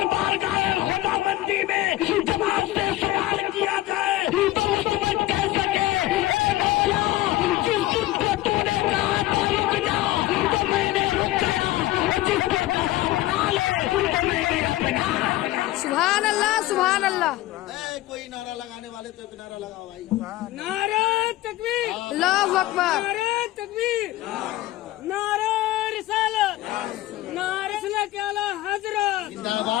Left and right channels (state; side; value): quieter; right; 16.5 dB